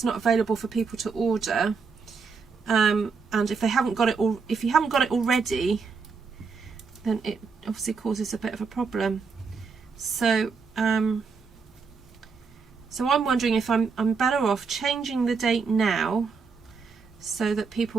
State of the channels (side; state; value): left; quieter; 5.1 dB